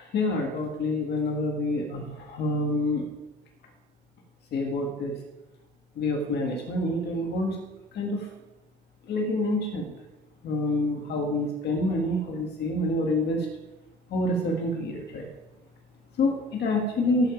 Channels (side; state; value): both; normal; correlation 0.45